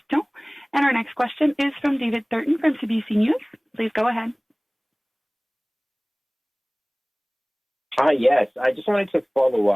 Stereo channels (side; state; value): both; identical; correlation 1.00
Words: And our next question is from David Thurton from CBC News. Please go ahead. Hi, yes. I just wanted to follow